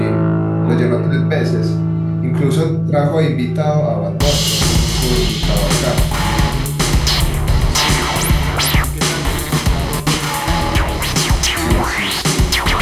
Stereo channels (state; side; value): identical; both; correlation 1.00